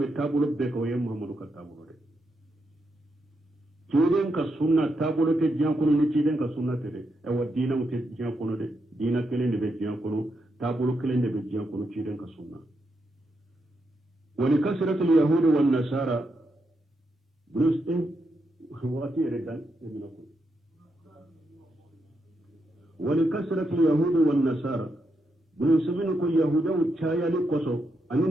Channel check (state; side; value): normal; both; correlation 0.83